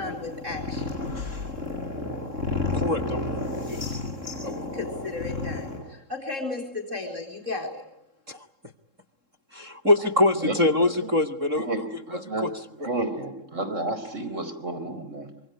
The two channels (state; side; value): late; left; 3.7 ms